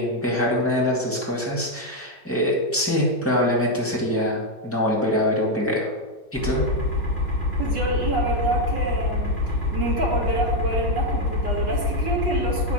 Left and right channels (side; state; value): both; normal; correlation 0.03